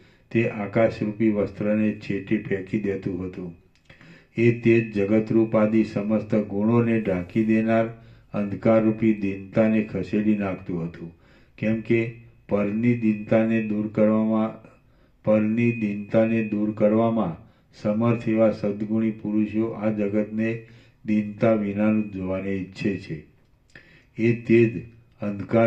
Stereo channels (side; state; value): both; identical; correlation 1.00